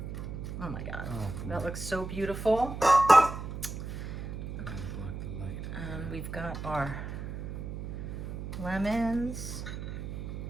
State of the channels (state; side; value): noise; right; hum, 6 dB below the sound